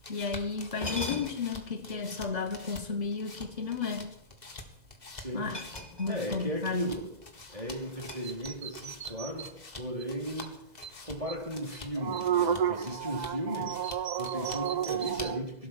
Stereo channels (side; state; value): left; late; 2.0 ms